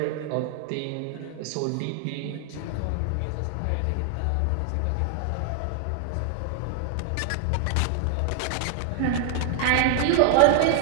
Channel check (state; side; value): different; both; correlation 0.00